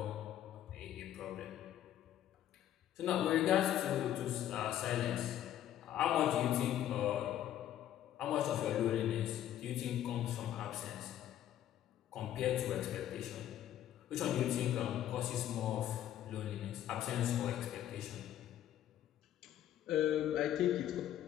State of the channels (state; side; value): quieter; right; 11.7 dB